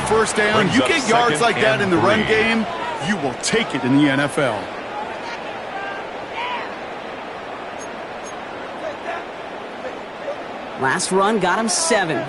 first down. You get yards like that in the run game, you will take it in the NFL. Last run got him 7.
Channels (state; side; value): identical; both; correlation 1.00